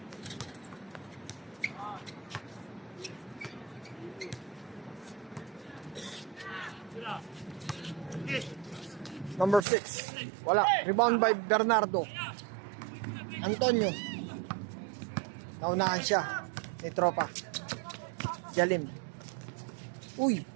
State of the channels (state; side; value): drops out; left; at 9.7 s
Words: Number 6. Wala. Rebound by Bernardo. Antonio. Naunahan siya. Ni Tropa. Jalim. Uy.